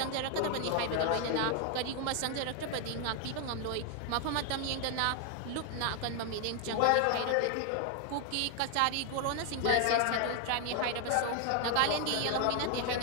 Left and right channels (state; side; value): different; both; correlation 0.00